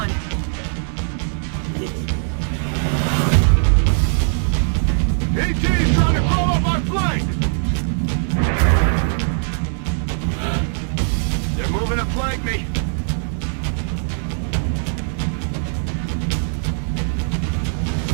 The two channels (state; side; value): silent; left; 65 dB below the other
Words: AT's trying to throw up my flank. They're moving to flank me.